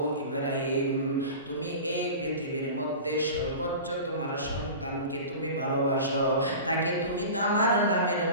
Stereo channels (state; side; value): inverted; both; correlation -0.34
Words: ইব্রাহিম তুমি এই পৃথিবীর মধ্যে সর্বোচ্চ তোমার সন্তানকে তুমি ভালোবাসো, তাকে তুমি আমার নামের